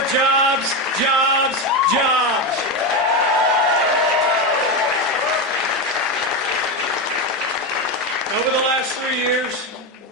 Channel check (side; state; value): both; normal; correlation 0.14